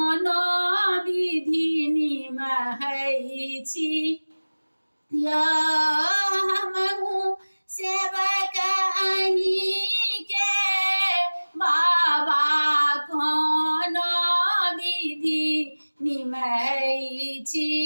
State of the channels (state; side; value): inverted; both; correlation -1.00